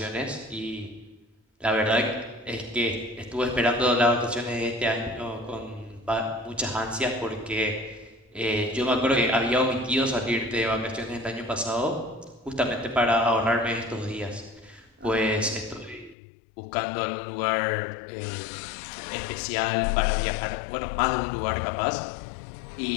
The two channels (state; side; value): drops out; right; at 16.2 s